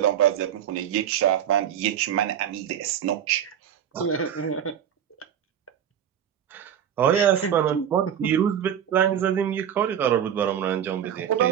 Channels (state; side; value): quieter; left; 9.4 dB